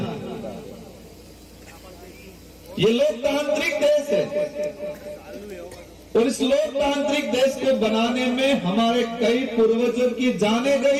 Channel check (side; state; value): both; identical; correlation 1.00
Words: ये लोकतांत्रिक देश है और इस लोकतांत्रिक देश को बनाने में हमारे कई पूर्वजों की जानें